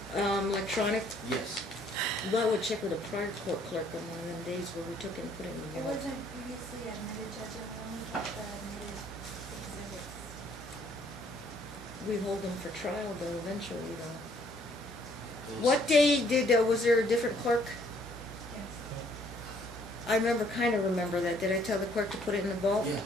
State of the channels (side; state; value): both; normal; correlation 0.64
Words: vault. Electronic. Yes. Well, I would check with a prior court clerk on one of them days where we took and put in the It vault. wasn't previously admitted, Judge, I only kept the admitted exhibits. We hold them for trial though, eventually though. It was- What day did, was there a different clerk? Yes. I remember that. Did I tell the clerk to put it in the vault? Yeah.